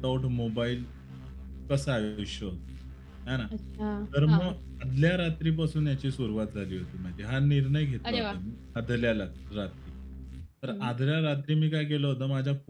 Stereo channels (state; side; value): identical; both; correlation 1.00